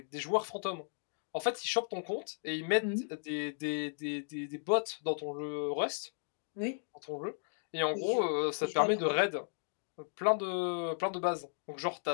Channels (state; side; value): silent; right; digital silence